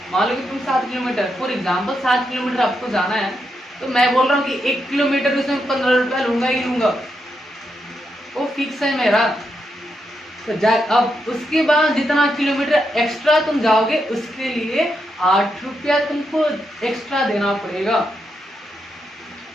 मान लो कि तुम 7 किलोमीटर फॉर एग्जाम्पल 7 किलोमीटर आपको जाना है, तो मैं बोल रहा हूँ कि 1 किलोमीटर उसमें 15 रुपया लूंगा ही लूंगा, वो फिक्स है मेरा। तो अब उसके बाद जितना किलोमीटर एक्स्ट्रा तुम जाओगे उसके लिए 8 रुपया तुमको एक्स्ट्रा देना पड़ेगा।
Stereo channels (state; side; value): normal; both; correlation 0.83